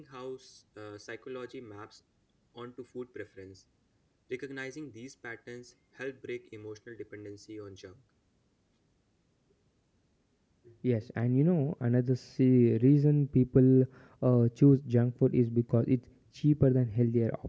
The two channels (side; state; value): both; identical; correlation 1.00